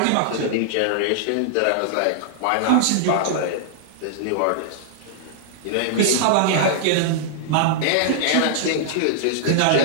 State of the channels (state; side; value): different; both; correlation -0.01